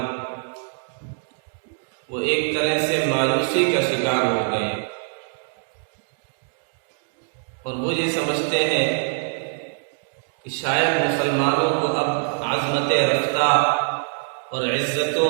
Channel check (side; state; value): left; silent; digital silence